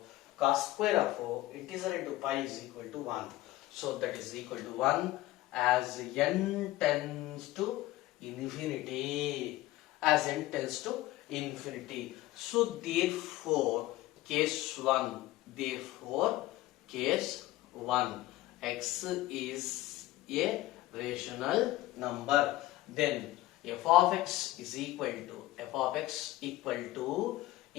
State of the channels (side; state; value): right; quieter; 16.8 dB